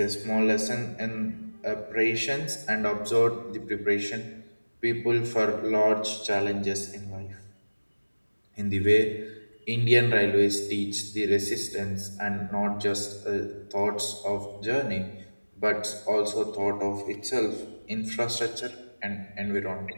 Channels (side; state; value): both; inverted; correlation -1.00